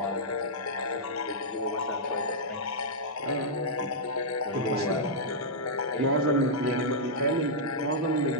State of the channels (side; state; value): both; normal; correlation -0.10